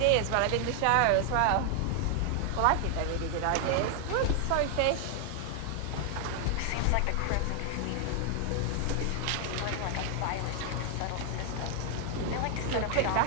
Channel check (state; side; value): different; both; correlation 0.00